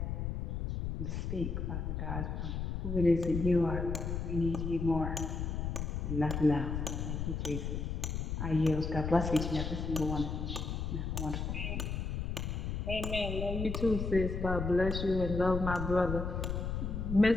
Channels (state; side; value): noise; left; rumble, 2 dB below the sound